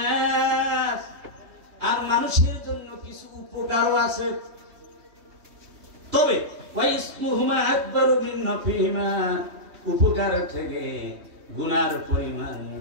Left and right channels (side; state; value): left; late; 3.1 ms